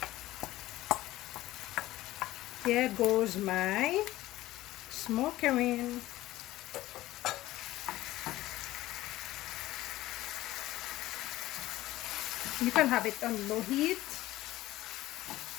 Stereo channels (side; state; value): right; quieter; 16.3 dB